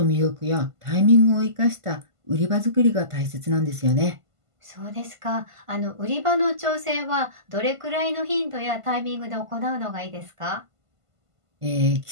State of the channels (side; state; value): left; late; 1.5 ms